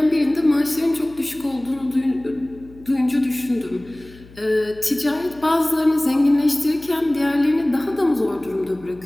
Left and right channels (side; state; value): left; noise; hum, 22 dB below the sound